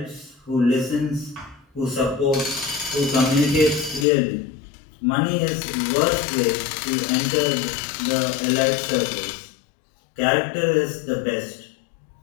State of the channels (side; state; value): right; drops out; at 4.0 s